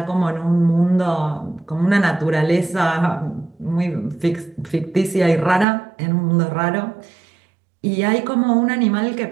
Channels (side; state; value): left; drops out; at 5.7 s